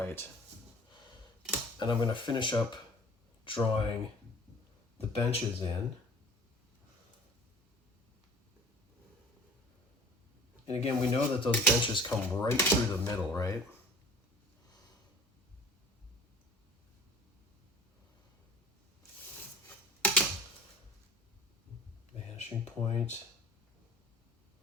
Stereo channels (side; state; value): both; normal; correlation 0.45